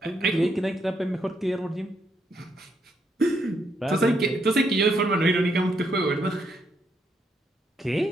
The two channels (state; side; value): normal; both; correlation 0.76